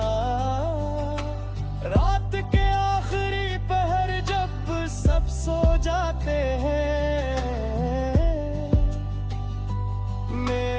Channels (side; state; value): both; identical; correlation 1.00